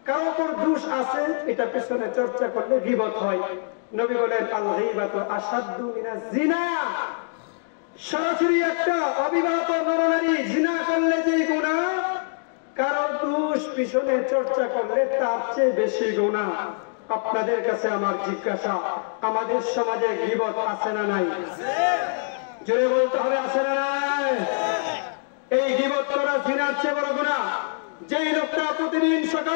কারো উপর দোষ আছে এটা পেছনে চর্চা করলে গীবত হয়। নবী বলেন আল গীবাতু আশাদ্দু মিনাজ জিনা। সরাসরি একটা অবিবাহিত নরনারী জিনা করলে যে গুনাহ, কারো দোষ পিছনে চর্চা করলে তার চেয়ে বেশি গুনাহ। আপনাদের কাছে আমার জিজ্ঞাসা, আমাদের সমাজে গীবত আছে না নাই? জোরে বলতে হবে, আছে না নাই? এই গীবত করা জিনার চেয়ে বড় গুনাহ। যেই লোকটা প্রতিদিন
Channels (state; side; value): silent; right; digital silence